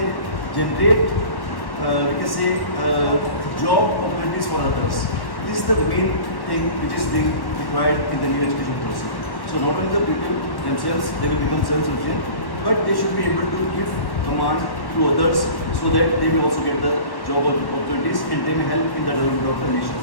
generate, we can say, job opportunities for others. This is the main thing which is being required in the new education policy. So not only the people themselves, they will become self-sufficient, but they should be able to give command to others so that they will also get the job opportunities and they may help in the development of the nation.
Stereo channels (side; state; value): right; late; 1.1 ms